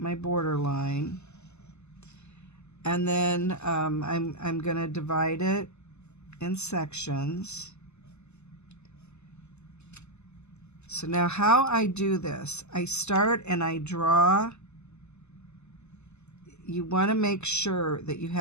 border line, and then I'm going to divide it in sections. So now how I do this, I start and I draw. You want to make sure that you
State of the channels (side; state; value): right; late; 0.82 ms